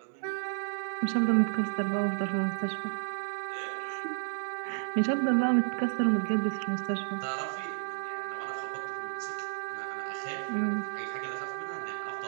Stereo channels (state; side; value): silent; left; 57 dB below the other